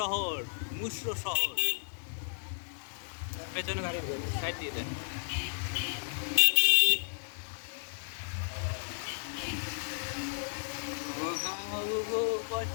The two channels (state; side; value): silent; right; digital silence